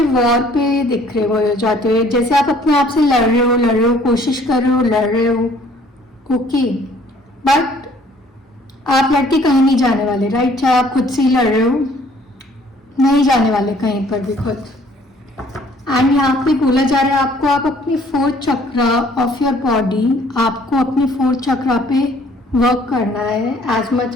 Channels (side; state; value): both; normal; correlation 0.58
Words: वॉर पे दिख रहे हो जाते हुए, जैसे आप अपने आप से लड़ रहे हो, कोशिश कर रहे हो, लड़ रहे हो। ओके, बट आप लड़के कहीं नहीं जाने वाले, राइट। चाहे आप खुद से ही लड़ रहे हो, नहीं जाने वाले कहीं पर भी खुद। एंड यहाँ पे बोला जा रहा है आपको, आप अपने 4th chakra of your body, आपको अपने 4th चक्रा पे वर्क करना है as